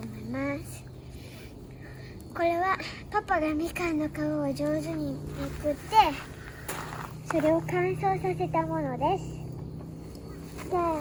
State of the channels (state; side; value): identical; both; correlation 1.00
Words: います。これはパパがみかんの皮を上手にめくってそれを乾燥させたものです。じゃ